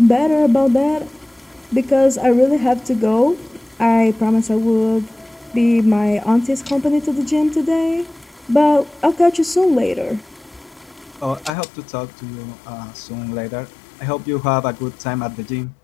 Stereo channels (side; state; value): right; drops out; at 11.5 s